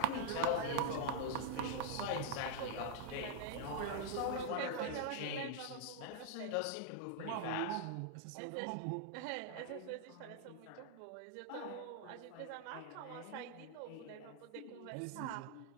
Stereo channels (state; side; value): different; both; correlation -0.01